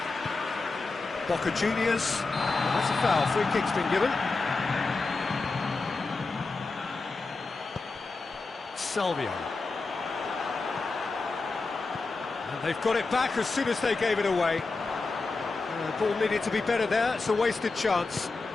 Boca Juniors. Well, that's a foul. Free kick's been given. Salvio. And they've got it back as soon as they gave it away. The ball needed to be better there. It's a wasted chance.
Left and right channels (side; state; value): right; quieter; 3.8 dB